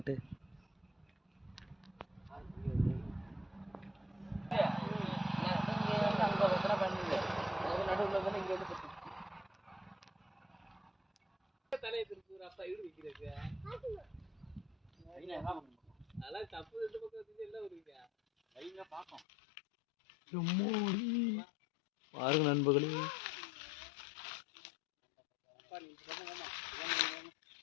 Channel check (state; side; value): drops out; right; at 19.2 s